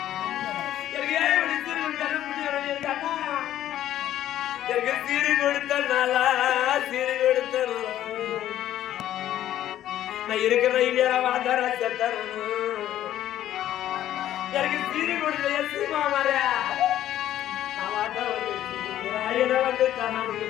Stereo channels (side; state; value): right; quieter; 12.3 dB